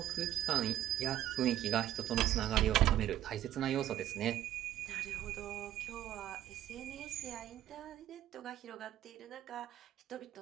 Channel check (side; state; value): left; quieter; 12.7 dB